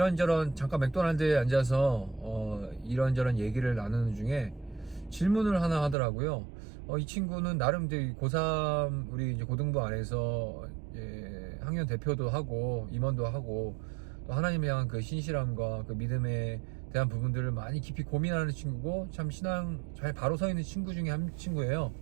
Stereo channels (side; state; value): left; drops out; at 6.0 s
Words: 잠깐 맥도날드에 앉아서 이런저런 얘기를 나누는 중에 질문을 하나 하더라고요. 이 친구는 나름 고3 우리 이제 고등부 안에서 학년 대표도 하고 임원도 하고 또 하나님에 향한 그 신실함과 그 믿음에 대한 부분들을 많이 깊이 고민하는 친구고 참 신앙 잘 바로 서 있는 친구 중에 한 친구예요.